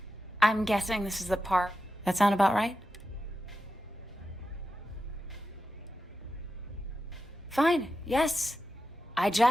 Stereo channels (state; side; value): normal; both; correlation 0.90